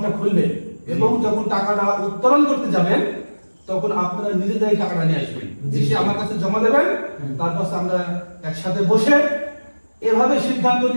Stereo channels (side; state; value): both; inverted; correlation -1.00